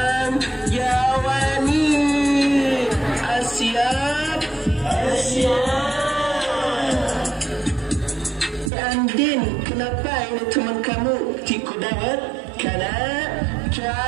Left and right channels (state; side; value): drops out; left; at 8.7 s